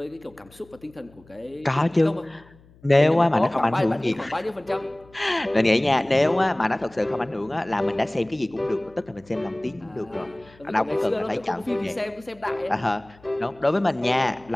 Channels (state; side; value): noise; left; hum, 27 dB below the sound